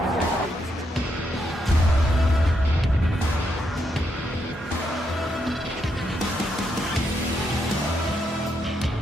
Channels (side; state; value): both; normal; correlation 0.79